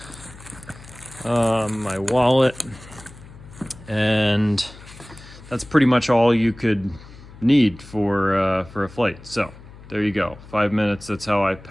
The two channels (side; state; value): left; noise; hum, 19 dB below the sound